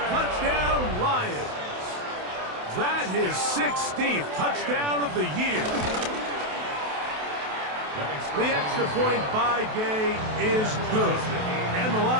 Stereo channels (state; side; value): late; left; 28 ms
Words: Touchdown, Lions. That his 16th touchdown of the year. The extra point by Gay is good. And the